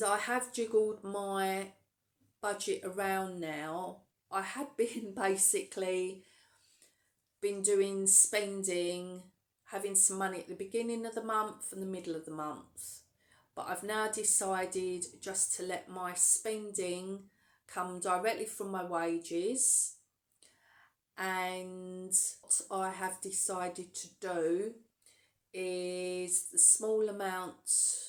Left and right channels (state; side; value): identical; both; correlation 1.00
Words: I have jiggled my budget around now. I had been basically doing spending, having some money at the beginning of the month and the middle of the month, but I've now decided just to let my spending come directly from my wages. And what I have decided to do is the small amount